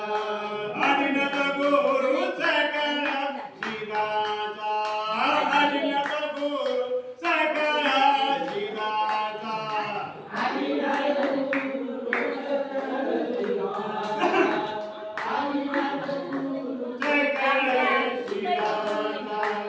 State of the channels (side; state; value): both; identical; correlation 1.00